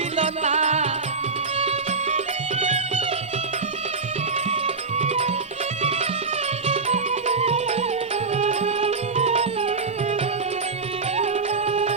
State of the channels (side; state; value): left; quieter; 4.5 dB